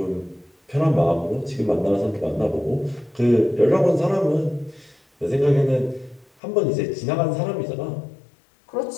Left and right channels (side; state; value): right; drops out; at 6.3 s